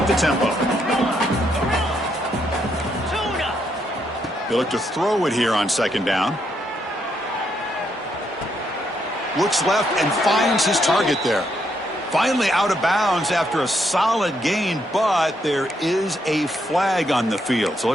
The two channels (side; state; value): both; normal; correlation 0.76